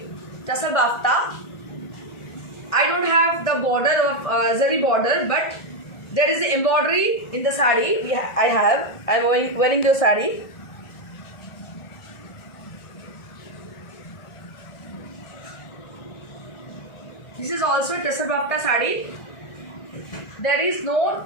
Tasal Bafta. I don't have the border of zari border, but there is the embroidery in the saree. I am wearing the saree. This is also Tasal Bafta saree. There is no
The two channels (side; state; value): right; late; 1.6 ms